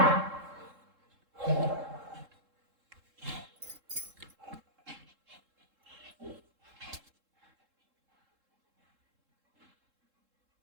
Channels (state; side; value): late; left; 3.7 ms